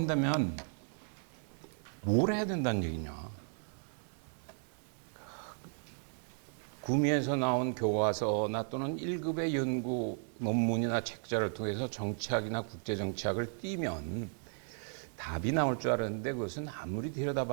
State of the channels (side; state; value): left; silent; 54 dB below the other